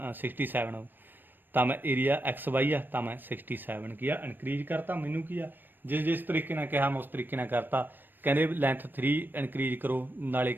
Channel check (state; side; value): late; left; 0.093 ms